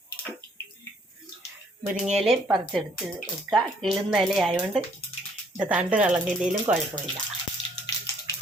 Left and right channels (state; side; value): normal; both; correlation 0.64